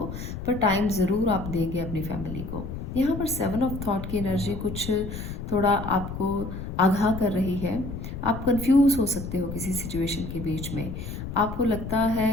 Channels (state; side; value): noise; left; rumble, 7 dB below the sound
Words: पर टाइम ज़रूर आप देंगे अपनी फैमिली को। यहाँ पर 7 ऑफ थॉट की एनर्जी कुछ थोड़ा आपको आगाह कर रही है। आप कंफ्यूज हो सकते हो किसी सिचुएशन के बीच में, आपको लगता